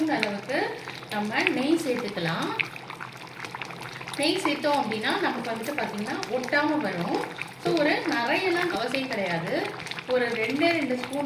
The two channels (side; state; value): both; identical; correlation 1.00